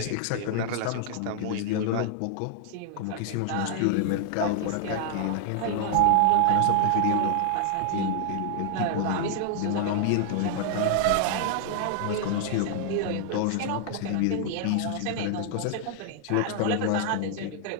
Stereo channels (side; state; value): both; different; correlation 0.00